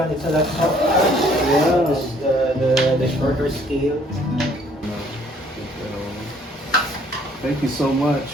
it's a lot softer. Yeah. This is the shorter scale. Thank you so much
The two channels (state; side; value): normal; both; correlation 0.61